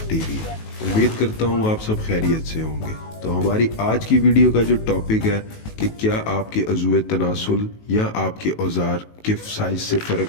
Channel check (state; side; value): late; right; 19 ms